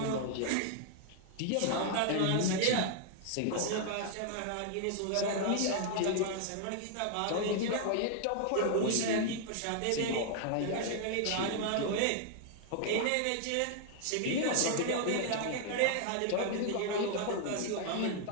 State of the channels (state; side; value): different; both; correlation 0.00